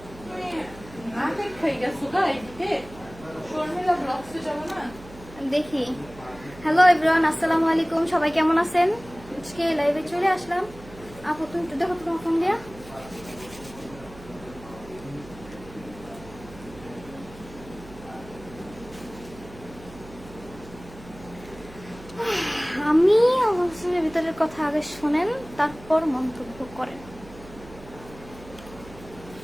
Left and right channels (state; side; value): noise; right; hum, 18 dB below the sound